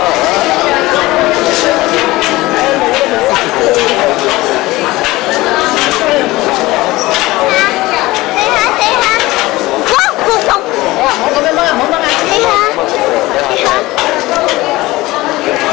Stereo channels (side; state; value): right; quieter; 19.3 dB